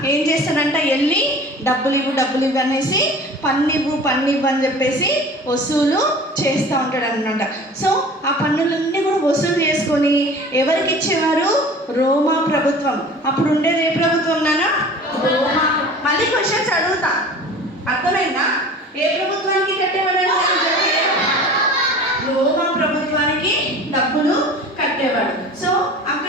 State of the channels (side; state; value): both; normal; correlation 0.41